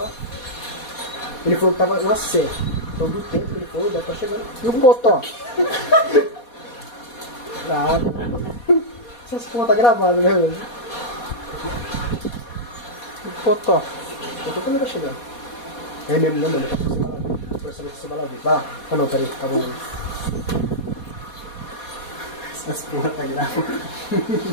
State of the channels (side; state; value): right; late; 4.2 ms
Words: Ele falou que tava na C. Então do tempo que ele falou, deve estar chegando. E o Potó? Nada. Essas porra tá gravada, né, velho? E o Potó? Eu tô também tá chegando. É mesmo, né, mano? Pra saber se você vai lá ver. Vai lá. Ah não, peraí, tá bom. Essas porra tá gravada.